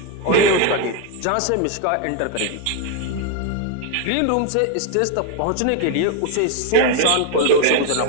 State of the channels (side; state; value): both; different; correlation 0.01